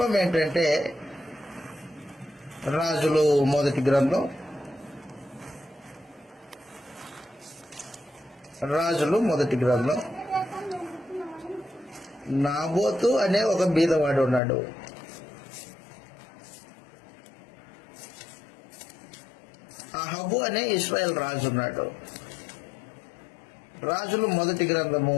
ఏంటంటే, రాజులు మొదటి గ్రంథం, నాబోతు అనే ఒక బీదవాడు ఉన్నాడు. అహబు అనే ఇశ్రాయేల్ రాజు ఉన్నాడు. రాజులు మొదటి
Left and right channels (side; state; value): right; drops out; at 14.4 s